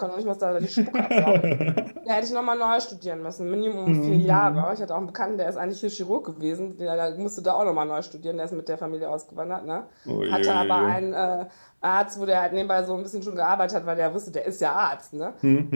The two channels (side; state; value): both; inverted; correlation -1.00